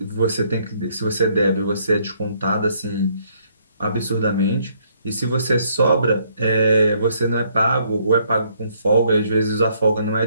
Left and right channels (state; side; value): inverted; both; correlation -0.68